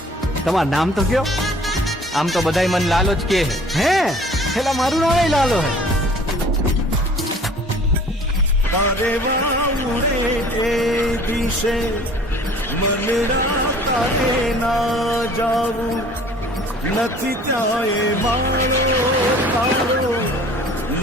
તમારું નામ તો કયો? આમ તો બધાય મન લાલો જ કે હે હેલા મારું નામ લાલો હે. તારે વાઉરે એ દિશે મનડા તારે ના જાવું. નથી ત્યાં એ માળો તારો,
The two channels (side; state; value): both; normal; correlation 0.50